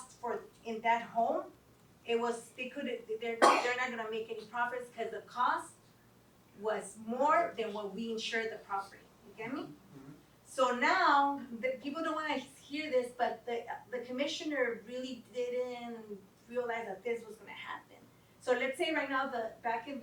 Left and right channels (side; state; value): both; identical; correlation 1.00